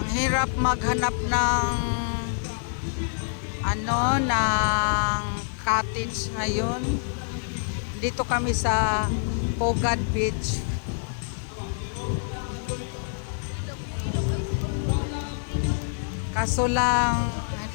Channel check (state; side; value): silent; right; 60 dB below the other